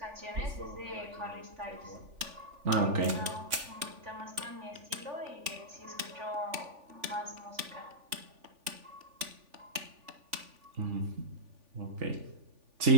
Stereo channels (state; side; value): late; left; 3.4 ms